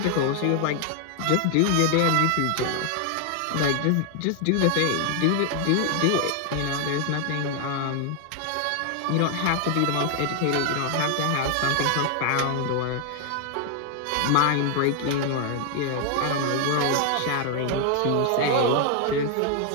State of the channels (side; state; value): both; different; correlation 0.00